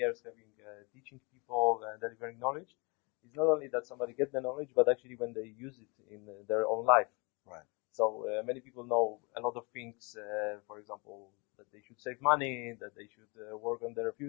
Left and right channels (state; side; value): quieter; right; 29.9 dB